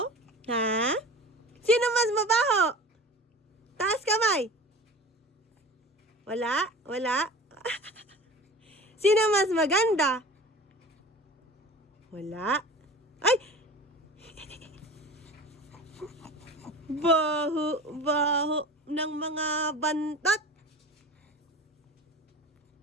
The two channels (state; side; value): normal; both; correlation 0.37